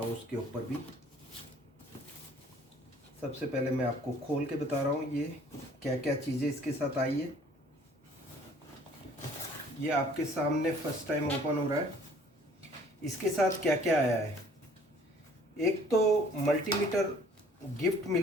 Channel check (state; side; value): normal; both; correlation 0.56